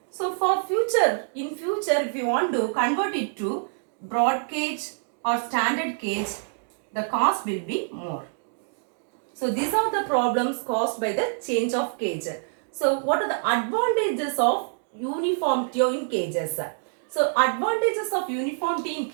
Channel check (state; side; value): silent; left; digital silence